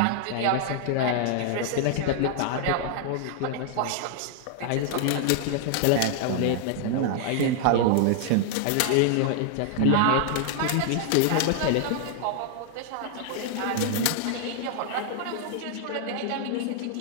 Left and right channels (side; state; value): both; different; correlation 0.00